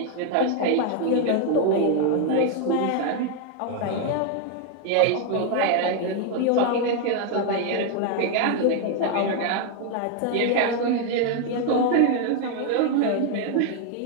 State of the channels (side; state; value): both; different; correlation 0.01